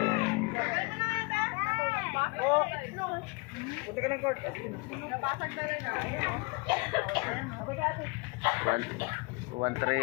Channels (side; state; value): right; quieter; 28.6 dB